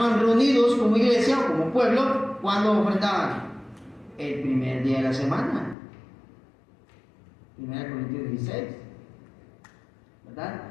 reunidos como iglesia o como pueblo. ¿Cuándo ofrendaban? El primer día de la semana. 1 Corintios 16, ¿verdad?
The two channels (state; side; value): drops out; right; at 5.8 s